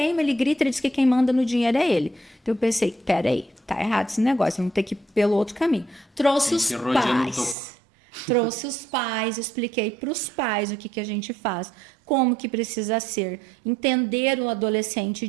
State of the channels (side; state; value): left; drops out; at 7.6 s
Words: ele grita, ele diz que quem manda no dinheiro é ele. Então, eu pensei, peraí, tá errado esse negócio, vamos ter que ir pelo outro caminho. Trouxe os pais. Trouxe os pais, expliquei para os pais o que a gente faz, como que precisa ser, entender o adolescente